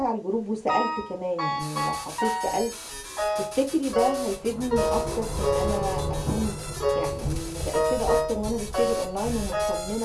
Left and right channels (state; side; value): identical; both; correlation 1.00